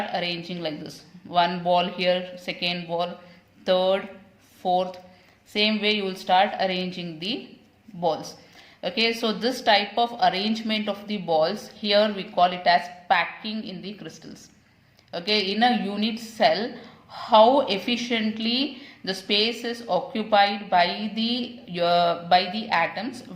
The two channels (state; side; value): identical; both; correlation 1.00